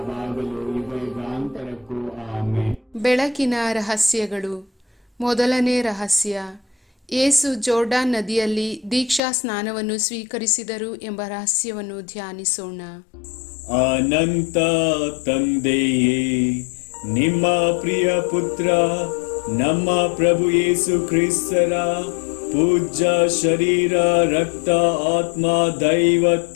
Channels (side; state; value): right; drops out; at 9.2 s